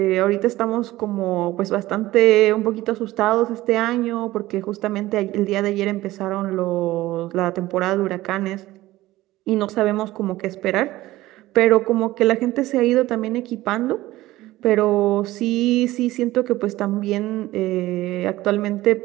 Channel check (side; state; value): left; quieter; 17.0 dB